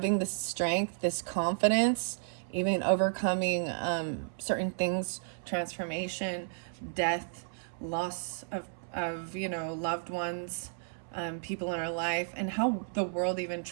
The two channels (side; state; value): left; silent; 56 dB below the other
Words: this strength, this confidence, even overcoming certain things, transformation, death, loss of you know, loved ones, people in our life, and how the world even